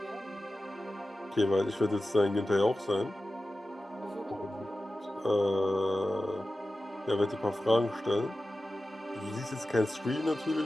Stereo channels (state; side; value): normal; both; correlation 0.94